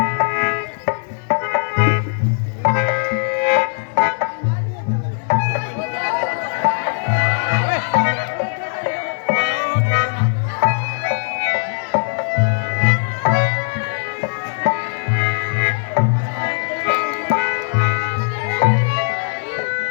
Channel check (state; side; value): silent; right; 64 dB below the other